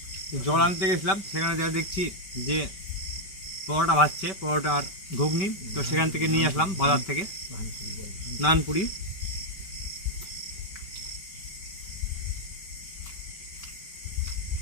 জল আনতে গেছিলাম, সেখানে যা দেখছি যে পরোটা ভাজছে, পরোটা আর ঘুগনি, তো সেখান থেকে নিয়ে আসলাম বাজার থেকে নানপুরি।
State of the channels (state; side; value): late; right; 5.2 ms